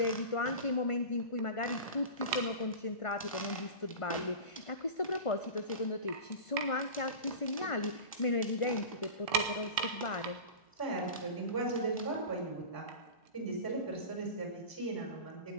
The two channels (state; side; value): late; right; 1.4 ms